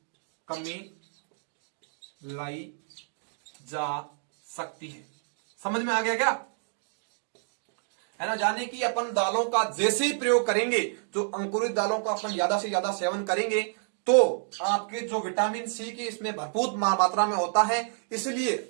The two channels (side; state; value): left; silent; digital silence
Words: कमी लाई जा सकती है। समझ में आ गया क्या, है ना। जाने कि अपन दालों का जैसे ही प्रयोग करेंगे, जो अंकुरित दालों का अपन ज्यादा से ज्यादा सेवन करेंगे, तो आपके जो विटामिन सी की इसमें भरपूर मात्रा में होता है, इसलिए